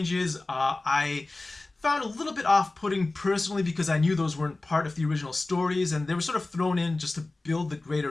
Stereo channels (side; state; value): right; quieter; 3.1 dB